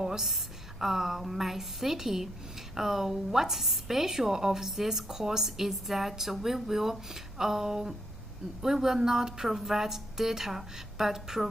my city. What's special of this course is that we will not provide data, but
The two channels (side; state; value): both; normal; correlation 0.76